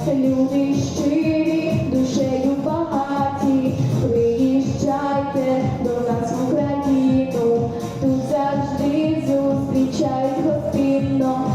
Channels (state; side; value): identical; both; correlation 1.00